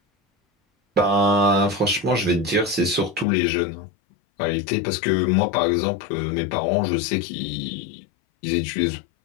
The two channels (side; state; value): right; drops out; at 3.2 s